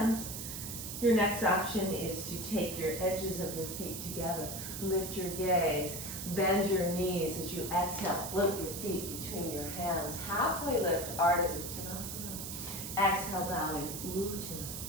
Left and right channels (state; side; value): noise; right; hiss, 7 dB below the sound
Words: Your next option is to take your edges of your feet together. Lift your gaze, bend your knees as you exhale, float your feet between your hands. Halfway lift, Ardha Uttanasana. Exhale, bowing,